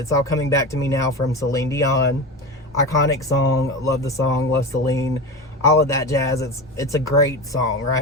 all coming back to me now from Celine Dion. Iconic song, love the song, love Celine, all of that jazz. It's a great song,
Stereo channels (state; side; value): normal; both; correlation 0.25